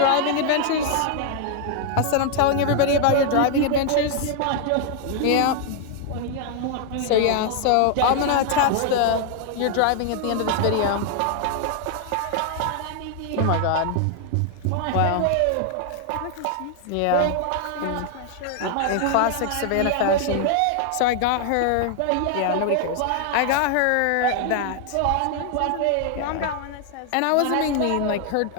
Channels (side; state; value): both; different; correlation 0.00